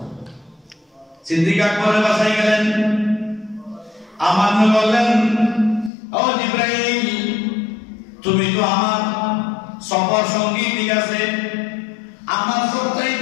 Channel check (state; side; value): drops out; right; at 5.9 s